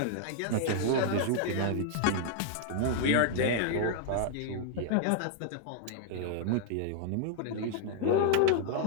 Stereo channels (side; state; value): both; different; correlation -0.01